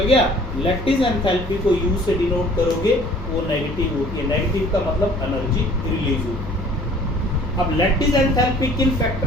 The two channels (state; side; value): noise; left; hum, 11 dB below the sound